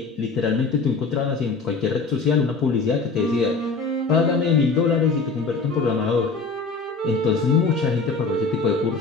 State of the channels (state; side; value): quieter; right; 4.3 dB